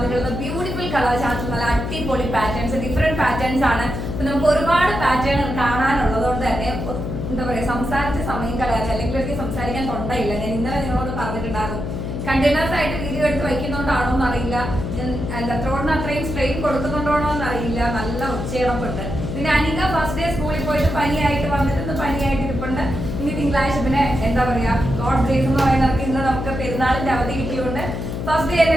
ബ്യൂട്ടിഫുൾ കളർ ചാർട്ട്, നല്ല അടിപൊളി പാറ്റേൺസ്, ഡിഫറെന്റ് പാറ്റേൺസ് ആണ്. അപ്പൊ നമുക്ക് ഒരുപാട് പാറ്റേൺ കാണാനുള്ളതുകൊണ്ട് തന്നെ എന്താ പറയാ, സംസാരിച്ച സമയം കളയാൻ അല്ലെങ്കിൽ എനിക്ക് സംസാരിക്കാൻ തൊണ്ടയില്ല. ഞാൻ ഇന്നലെ നിങ്ങളോട് പറഞ്ഞിട്ടുണ്ടായിരുന്നു, കണ്ടെയ്നേഴ്സ് ആയിട്ട് വീഡിയോ എടുത്ത് വയ്ക്കുന്നുണ്ടാണോ എന്നറിയില്ല, എന്താ ത്രോണിന് അത്രയും സ്ട്രെയിൻ കൊടുക്കുന്നുണ്ടോ എന്നറിയില്ല. നല്ല ഉച്ചയിടപ്പുണ്ട്. പിന്നെ അനിക ഫസ്റ്റ് ഡേ സ്കൂളിൽ പോയിട്ട് പനിയായിട്ട് വന്നിട്ട് പനിയായിട്ട് ഇരിപ്പുണ്ട്. ഇനി തിങ്കളാഴ്ച പിന്നെ എന്താ പറയാ, ഗോഡ് ഗ്രേസ് എന്ന് പറയുന്നവർക്ക് ഇന്ന് നമുക്ക് പെരുന്നാളിന്റെ അവധി കിട്ടിയുകൊണ്ട് ഫസ്റ്റ് ഡേ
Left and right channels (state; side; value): noise; left; hum, 5 dB below the sound